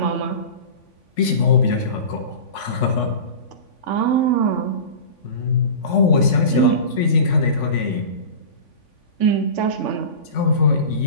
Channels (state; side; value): late; right; 3.5 ms